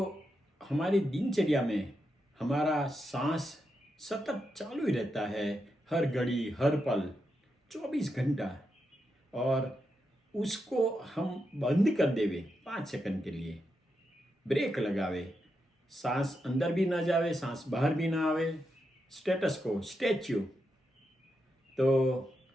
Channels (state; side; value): normal; both; correlation 0.85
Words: हमारी दिनचर्या में हमारा सांस सतत चालू ही रहता है, हर घड़ी हर पल 24 घंटा। और उसको हम बंद कर देवे 5 सेकंड के लिए, ब्रेक लगावे, सांस अंदर भी ना जावे, सांस बाहर भी ना आवे, स्टेटस को स्टैच्यू, तो